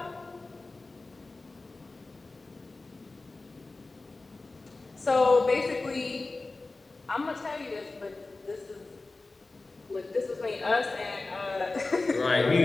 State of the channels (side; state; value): right; quieter; 3.4 dB